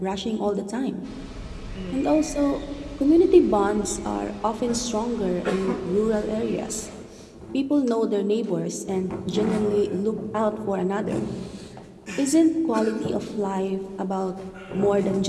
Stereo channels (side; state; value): both; identical; correlation 1.00